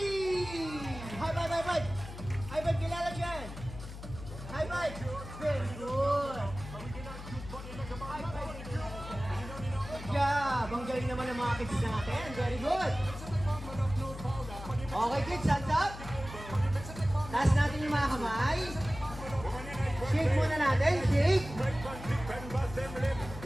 High five, high five! High five, kilala dyan! High five! Very good! High five! Good job! Ang galing naman ng mga kids natin. Very good! Okay kids, hands up! Taas natin yung mga kamay. Shake muna natin, shake!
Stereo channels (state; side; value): noise; left; hum, 12 dB below the sound